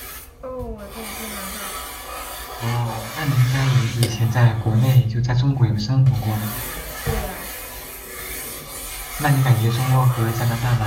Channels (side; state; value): both; identical; correlation 1.00